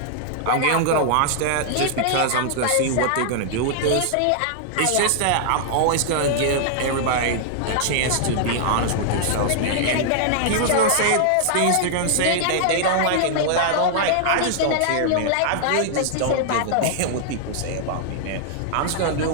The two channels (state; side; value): different; both; correlation -0.01